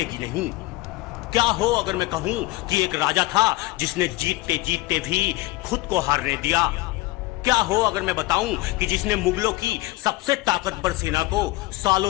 नहीं। क्या हो अगर मैं कहूं कि एक राजा था जिसने जीतते जीतते भी खुद को हारने दिया। क्या हो अगर मैं बताऊं कि जिसने मुगलों की सबसे ताकतवर सेना को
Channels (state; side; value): quieter; right; 20.1 dB